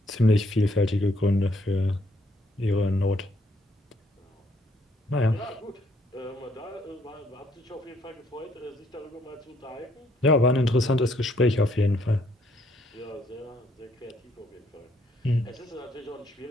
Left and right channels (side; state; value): both; normal; correlation 0.69